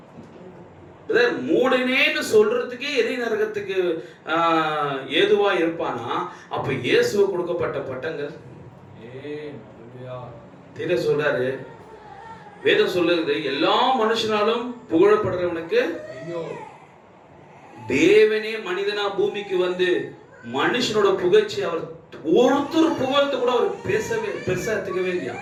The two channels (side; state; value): both; identical; correlation 1.00